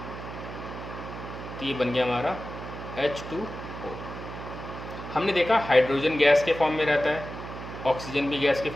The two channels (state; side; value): noise; right; hum, 10 dB below the sound